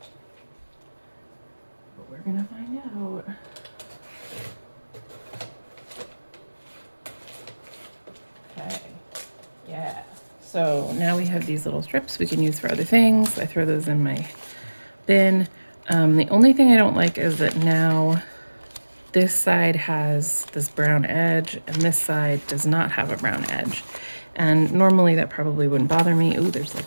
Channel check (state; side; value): inverted; both; correlation -1.00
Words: But we're going to find out. Okay. Yeah. So now we have these little strips we can use for other things. I throw those in my bin. The only thing I don't like is that now this side has this brown edge and this side does not have a brown edge. And normally that probably wouldn't bother me. Ooh, there's